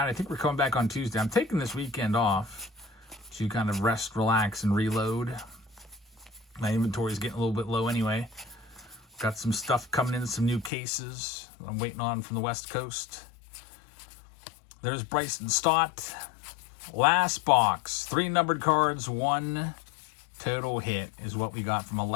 I think we're coming back on Tuesday. I'm taking this weekend off to kind of rest, relax, and reload. My inventory is getting a little bit low anyway. Got some stuff coming in, some new cases I'm waiting on from the West Coast. There's Bryson Stott. Last box. 3 numbered cards, 1 total hit is what we got from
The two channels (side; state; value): right; drops out; at 10.7 s